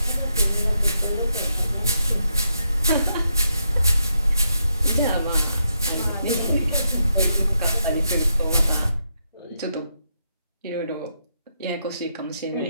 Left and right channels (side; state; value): both; inverted; correlation -0.81